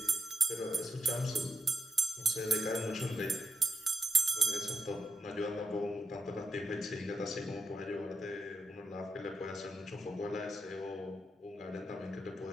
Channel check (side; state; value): both; normal; correlation 0.82